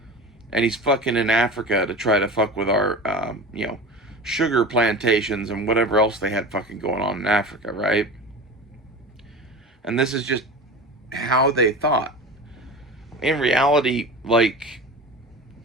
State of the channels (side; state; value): both; normal; correlation 0.32